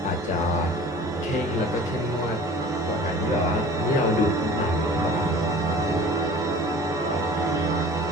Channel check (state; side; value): normal; both; correlation 0.44